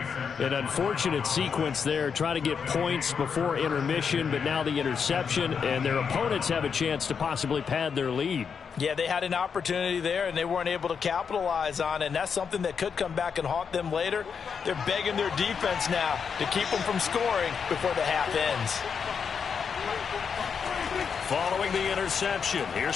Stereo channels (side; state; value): right; quieter; 6.4 dB